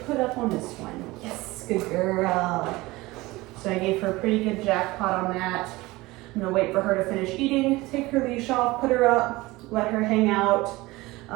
up on this one. Yes, good girl. So I gave her a pretty good jackpot on that. I'm gonna wait for her to finish eating, take her leash off, put her up, let her hang out,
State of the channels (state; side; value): quieter; left; 20.5 dB